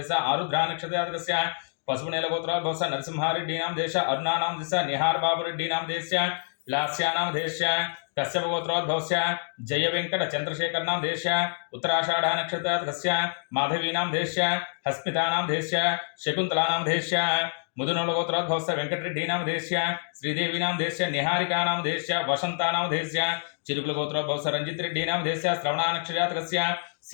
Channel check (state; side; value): silent; right; digital silence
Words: आरुद्रा नक्षत्रजातकस्य पशुपुनेलगोत्रोद्भवस्य नरसिंहा रेड्डी नामधेयस्य अरुणा नामधेयस्य निहार बाबू रेड्डी नामधेयस्य लास्या नामधेयस्य कश्यपगोत्रोद्भवस्य जय वेंकट चंद्रशेखर नामधेयस्य उत्तराषाढ़ नक्षत्रजातकस्य माधवी नामधेयस्य हस्मिता नामधेयस्य शकुंतला नामधेयस्य मुदुनोलगोत्रोद्भवस्य वेंकटरेड्डी नामधेयस्य श्रीदेवी नामधेयस्य निहारिका नामधेयस्य वसंता नामधेयस्य चिरुकुलगोत्रोद्भवस्य रंजित रेड्डी नामधेयस्य श्रवणा नक्षत्रजातकस्य